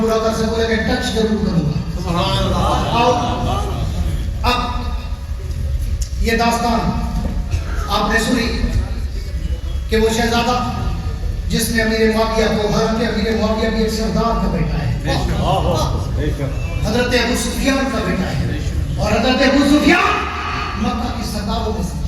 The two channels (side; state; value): both; identical; correlation 1.00